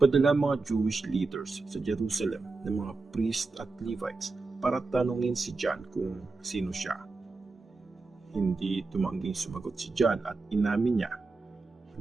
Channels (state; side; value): quieter; left; 3.8 dB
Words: mga Jewish leaders sa Jerusalem ng mga priest at Levites para tanungin si John kung sino siya. Hindi tumangging sumagot si John at inamin niya,